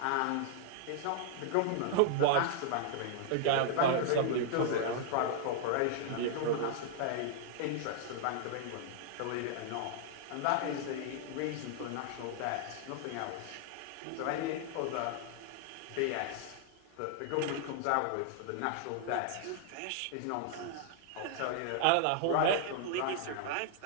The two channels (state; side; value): different; both; correlation -0.01